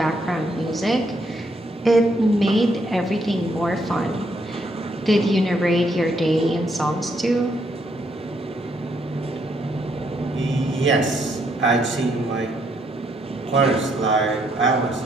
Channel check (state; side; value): normal; both; correlation 0.73